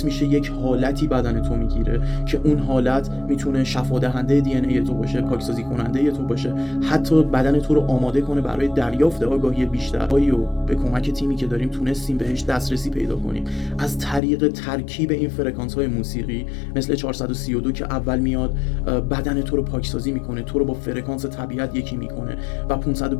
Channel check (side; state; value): right; drops out; at 14.2 s